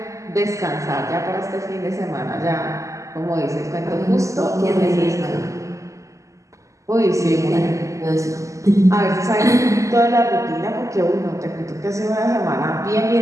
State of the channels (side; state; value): left; late; 0.16 ms